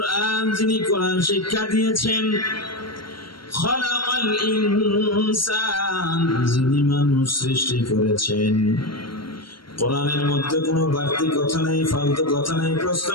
যিনি কোরআন শিক্ষা দিয়েছেন। খালাকাল ইনসান, যিনি মানুষ সৃষ্টি করেছেন। কোরআনের মধ্যে কোনো বাড়তি কথা নাই, ফালতু কথা নাই, প্রশ্ন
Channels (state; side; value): late; right; 0.73 ms